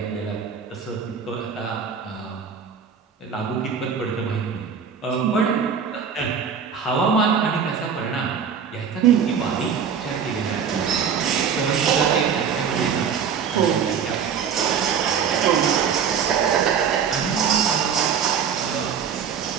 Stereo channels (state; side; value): quieter; left; 7.1 dB